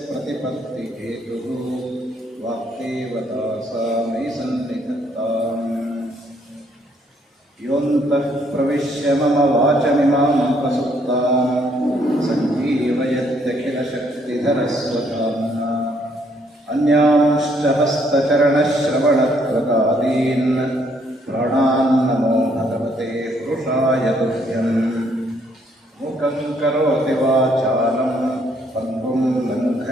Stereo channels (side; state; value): both; normal; correlation 0.69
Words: प्रतिपत्तिहेतुः वाक्देवता सा मयि सन्निधत्ताम्। योऽन्तः प्रविश्य मम वाचमिमामुपसुप्तां सञ्जीवयत्यखिलशक्तिधरस्वधाम्ना अन्यांश्च हस्तचरणश्रवणत्वकादीन् प्राणान्नमो भगवते पुरुषाय तुभ्यम्। मुखं करोति वाचालं पङ्गुं